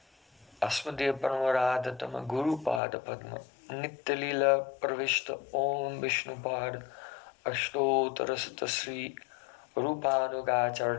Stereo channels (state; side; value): drops out; right; at 2.8 s